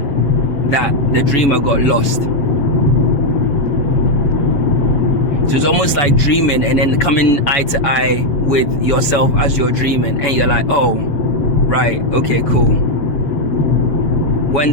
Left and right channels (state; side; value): late; right; 7.6 ms